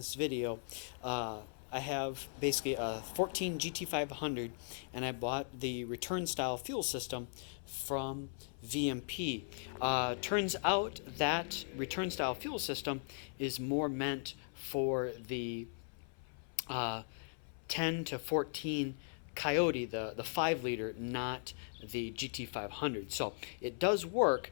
video, I have basically a 14 GT500 and I bought the return style fuel system from VMP. Turns out that return style fuel system is more meant for the uh, 10 to 14 Coyote, the 5 liter, not the GT500. So it does work.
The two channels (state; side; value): silent; right; 52 dB below the other